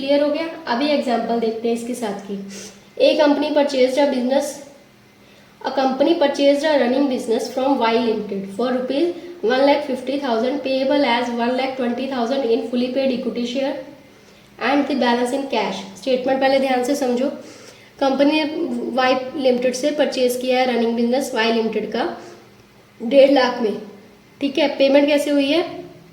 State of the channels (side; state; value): both; identical; correlation 1.00